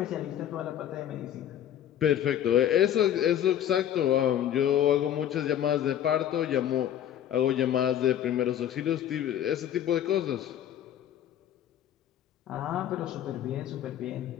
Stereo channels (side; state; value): right; quieter; 10.7 dB